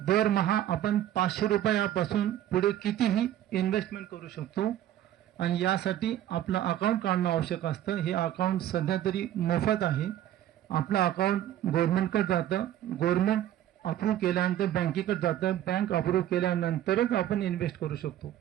दरमहा आपण 500 रुपयापासून पुढे कितीही इन्व्हेस्टमेंट करू शकतो, आणि यासाठी आपलं अकाउंट काढणं आवश्यक असतं। हे अकाउंट सध्या तरी मोफत आहे। आपलं अकाउंट गव्हर्नमेंटकडे जातं, गव्हर्नमेंट अप्रूव्ह केल्यानंतर बँकेकडे जातं, बँक अप्रूव्ह केल्यानंतरच आपण इन्व्हेस्ट करू शकतो,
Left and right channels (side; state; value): left; quieter; 12.3 dB